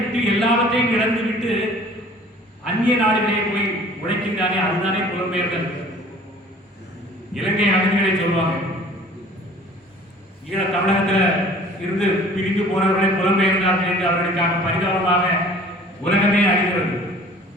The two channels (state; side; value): normal; both; correlation 0.49